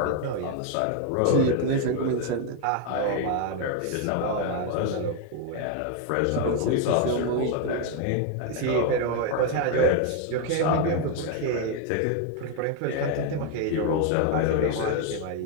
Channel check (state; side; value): different; both; correlation 0.01